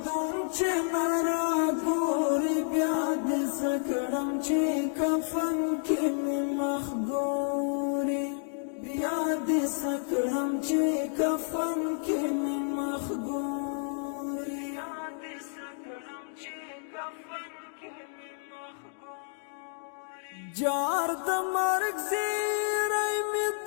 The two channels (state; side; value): silent; right; digital silence